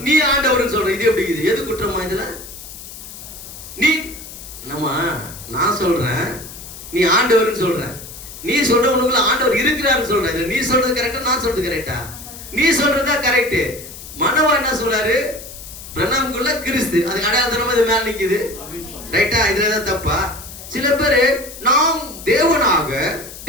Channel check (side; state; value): left; noise; hiss, 14 dB below the sound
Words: நீ ஆண்டவர்னு சொல்ற. இது எப்படி? இது எது குற்றமா இதுல? நீ நான் சொல்றேன் நீ ஆண்டவர்னு சொல்ற, நீ சொல்ற உனக்குள்ள ஆண்டவர் இருக்கிறாருன்னு சொல்ற. இதுல நீ சொல்றது கரெக்டா, நான் சொல்றது கரெக்டா? நீ சொல்றதா கரெக்ட். மனோவா என்ன சொல்றாரு? பிரணாமுக்குள்ள கிறிஸ்து, அதுக்கு அடையாளத்தனமா இது மேல நிக்குது. ரைட்டா? இதுலதான் தப்பா? சில பேரு நாம் தேவனாக,